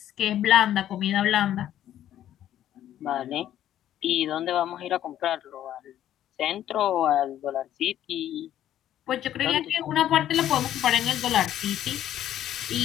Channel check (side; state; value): right; quieter; 11.7 dB